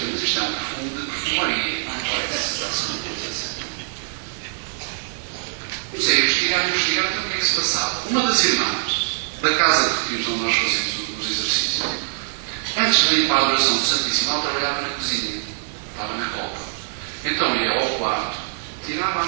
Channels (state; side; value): silent; left; digital silence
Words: mas isto é um perfume de perfumaria, não parece assim uma coisa assim. Comecei a investigar então o que é que se passava. Uma das irmãs da casa de retiros onde nós fazemos os exercícios, antes de ir para a adoração do Santíssimo, ela trabalhava na cozinha, estava na copa. Então ia ao quarto, tirava a